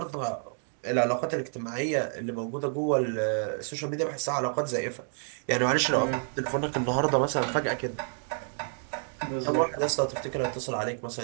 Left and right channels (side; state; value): left; silent; 58 dB below the other